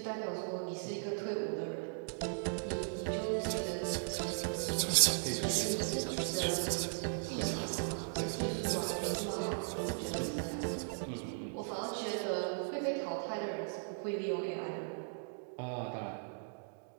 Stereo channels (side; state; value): left; silent; digital silence